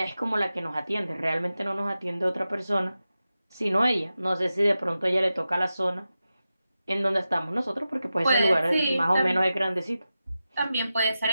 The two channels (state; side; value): inverted; both; correlation -0.92